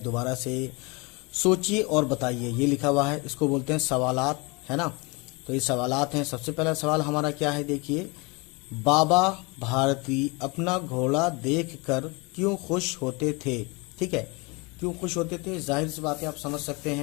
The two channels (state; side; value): quieter; right; 27.9 dB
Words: दोबारा से सोचिए और बताइए। ये लिखा हुआ है, इसको बोलते हैं सवालात, है ना। तो ये सवालात हैं। सबसे पहला सवाल हमारा क्या है, देखिए। बाबा भारती अपना घोड़ा देखकर क्यों खुश होते थे। ठीक है, क्यों खुश होते थे, जाहिर सी बात है, आप समझ सकते